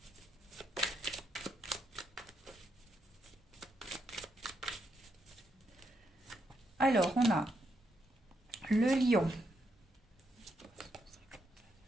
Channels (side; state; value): both; normal; correlation 0.79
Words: Alors, on a le lion.